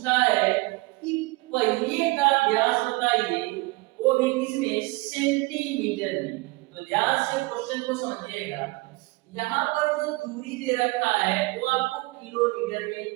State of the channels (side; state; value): left; quieter; 23.8 dB